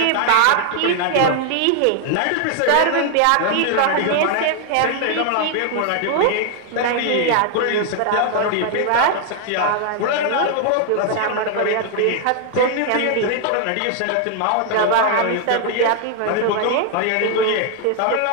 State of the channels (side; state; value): both; different; correlation 0.00